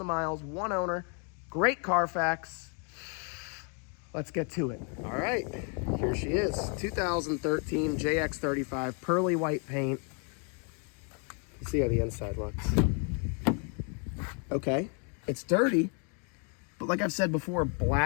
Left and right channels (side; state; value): right; quieter; 38.7 dB